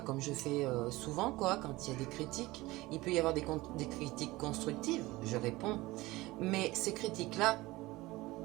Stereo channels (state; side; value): quieter; left; 19.8 dB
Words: Comme je fais souvent, quoi, quand il y a des critiques. Il peut y avoir des critiques constructives, je réponds. Mais ces critiques-là,